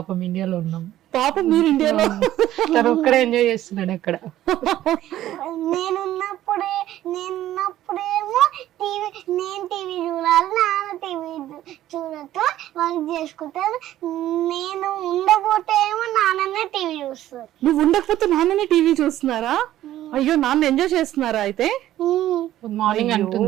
ఇండియాలో ఉన్నాం. పాపం మీరు ఇండియాలో. ఒక్కడే ఎంజాయ్ చేస్తున్నాడు అక్కడ. నేనున్నప్పుడేమో నేను టీవీ చూడాలి, నాన్న టీవీ చూడటం వర్క్ చేసుకుంటారు. నేను ఉండకపోతే ఏమో నాన్ననే టీవీ చూస్తారు. నువ్వు ఉండకపోతే నాన్ననే టీవీ చూస్తున్నారా? అయ్యో, నాన్న ఎంజాయ్ చేస్తున్నారా అయితే? మార్నింగ్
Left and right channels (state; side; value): quieter; left; 13.4 dB